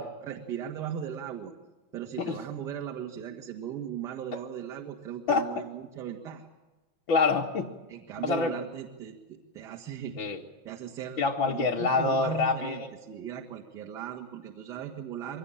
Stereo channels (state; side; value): late; right; 5.9 ms